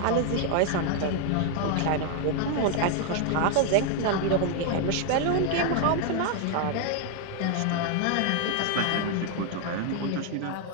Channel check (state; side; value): different; both; correlation 0.00